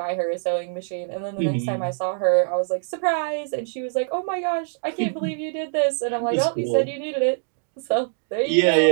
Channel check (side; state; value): left; silent; digital silence